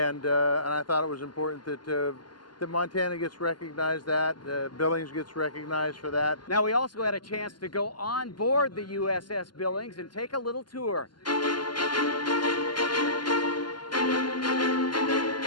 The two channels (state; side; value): late; right; 0.71 ms